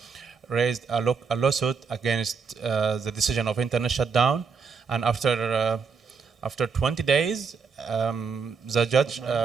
raised a lawsuit against the decision of internet shutdown. And after 20 days, the judge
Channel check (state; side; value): quieter; left; 5.5 dB